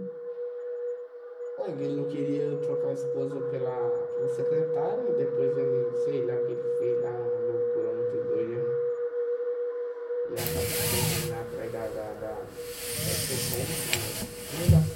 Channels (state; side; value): identical; both; correlation 1.00